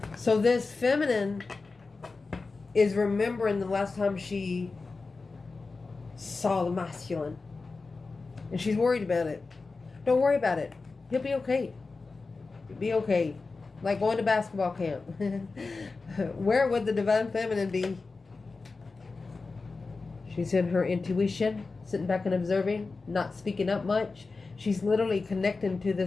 So this feminine is remembering the last time she saw the masculine. And she's worried about it. Don't worry about it. He'll be okay. He'll be okay. Like going to basketball camp. Where would the divine feminine be? She's in her intuition, sitting back and observing, not speaking up much. She's literally connecting to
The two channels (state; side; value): quieter; right; 4.0 dB